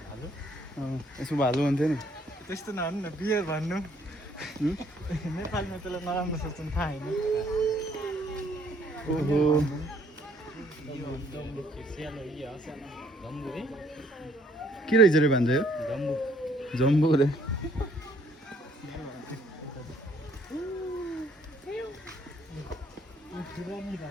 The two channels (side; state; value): both; normal; correlation 0.64